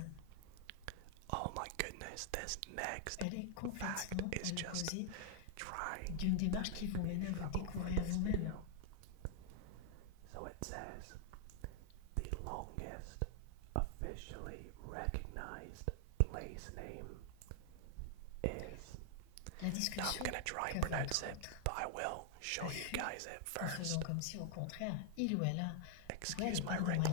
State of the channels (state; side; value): different; both; correlation 0.00